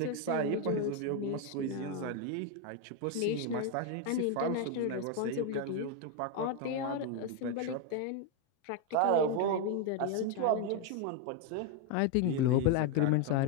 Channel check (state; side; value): different; both; correlation 0.02